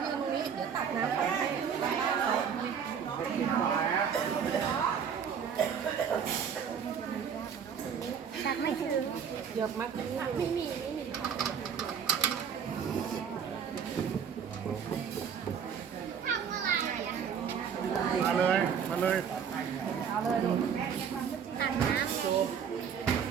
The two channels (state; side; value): quieter; left; 7.4 dB